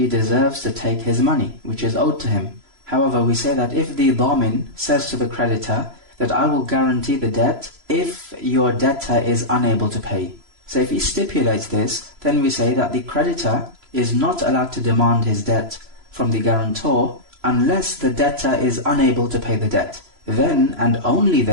deserves to take his money, which is owed to him. However, we say that if the dhamin says to the creditor that I will guarantee the debt if your debtor is unable to pay. So if he stipulates this, then we say that the creditor is not allowed to demand his debt from the guarantor unless the debtor is unable to pay the debt. Then and only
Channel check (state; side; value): late; left; 3.0 ms